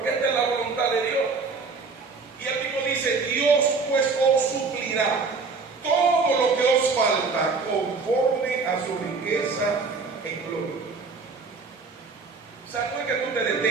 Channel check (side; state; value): left; quieter; 4.5 dB